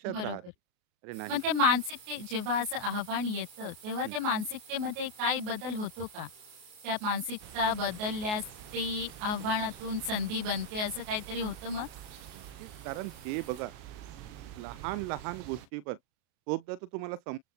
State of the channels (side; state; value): left; late; 33 ms